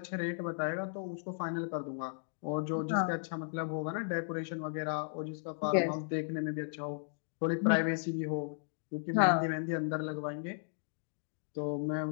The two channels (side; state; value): right; silent; digital silence